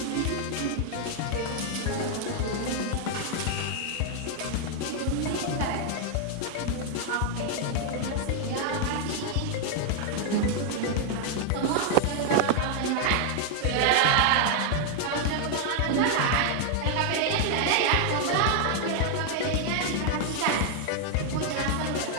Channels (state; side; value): different; both; correlation 0.00